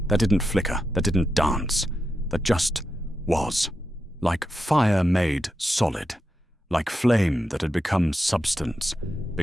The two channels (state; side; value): normal; both; correlation 0.87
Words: that didn't flicker, that didn't dance, that just was, like fire made solid, like flame that had become substance,